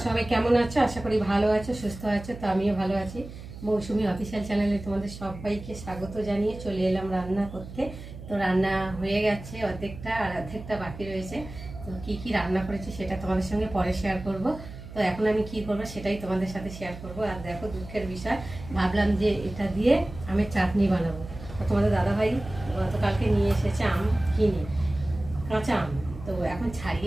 সবাই কেমন আছো? আশা করি ভালো আছো, সুস্থ আছো। তো আমিও ভালো আছি। মৌসুমি অফিসিয়াল চ্যানেলে তোমাদের সবাইকে স্বাগত জানিয়ে চলে এলাম রান্না করতে। তো রান্না হয়ে গেছে অর্ধেকটা, আর অর্ধেকটা বাকি রয়েছে। তো কী কী রান্না করেছি সেটা তোমাদের সঙ্গে পরে শেয়ার করব। তো এখন আমি কি করব সেটাই তোমাদের সাথে শেয়ার করব। আর দেখো, দুঃখের বিষয়, ভাবলাম যে এটা দিয়ে আমের চাটনি বানাবো। তো তোমাদের দাদাভাই গতকালকে নিয়ে এসেছে আম কিনে, কাঁচা আম। তো এখন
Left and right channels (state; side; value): noise; right; hum, 13 dB below the sound